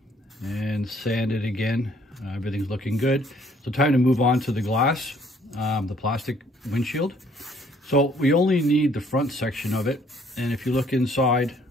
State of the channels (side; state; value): both; normal; correlation 0.62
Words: and sanded again. Everything's looking good. So time to move on to the glass, the plastic windshield. So we only need the front section of it, and if you look inside,